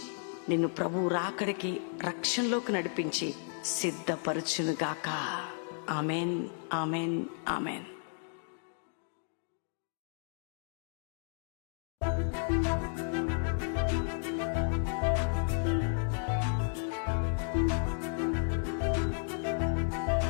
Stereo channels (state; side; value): silent; right; 56 dB below the other